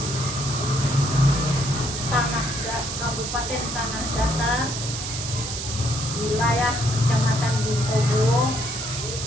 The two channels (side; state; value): right; noise; hiss, 5 dB below the sound